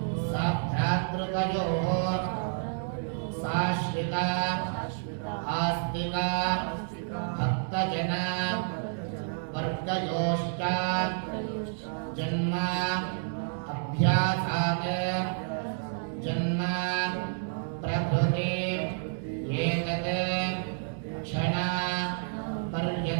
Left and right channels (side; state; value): left; silent; digital silence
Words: साभ्रातृकयोः साश्रिता आस्तिक भक्तजन वर्गयोश्च जन्म अभ्यासात् जन्म प्रभृति एतत् क्षण